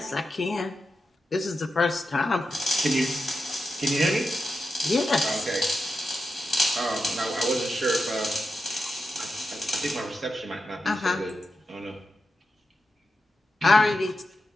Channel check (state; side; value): normal; both; correlation 0.89